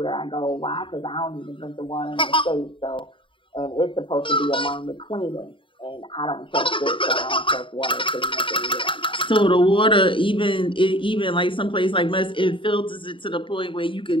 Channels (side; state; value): right; late; 0.25 ms